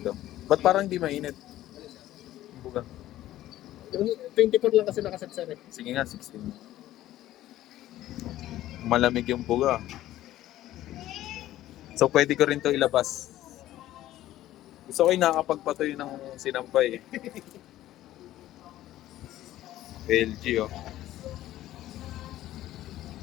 Ba't parang di mainit? Buga. Yung 24 lang kasi nakaset, sir. Eh. Sige nga, 16. Malamig yung buga. So pwede ko rin to ilabas. Gusto ko yung nakakapagpatoy ng sinampay eh. LG oh.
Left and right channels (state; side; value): quieter; right; 14.2 dB